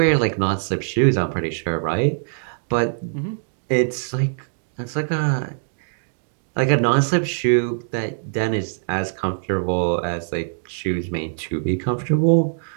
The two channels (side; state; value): left; silent; digital silence